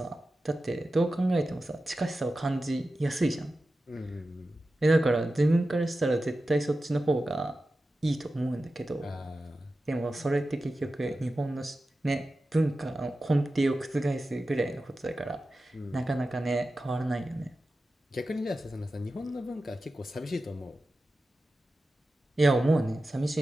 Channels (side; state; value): both; normal; correlation 0.93